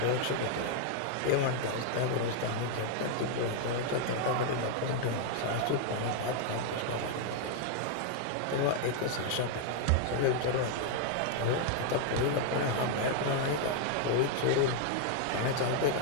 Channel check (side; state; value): both; different; correlation 0.00